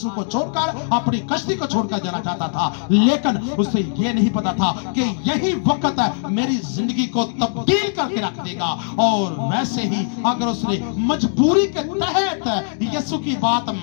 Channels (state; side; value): silent; right; digital silence